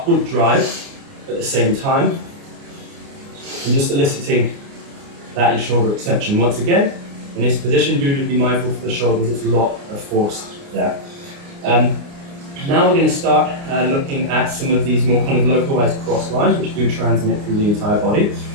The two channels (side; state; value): left; late; 29 ms